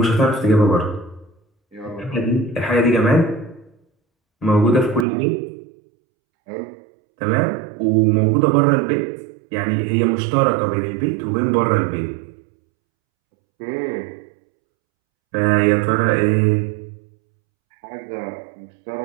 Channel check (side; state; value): left; drops out; at 5.1 s